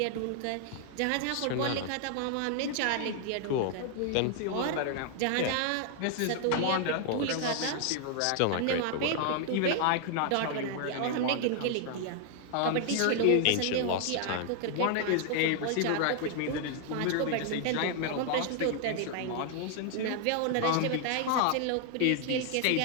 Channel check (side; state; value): both; different; correlation 0.00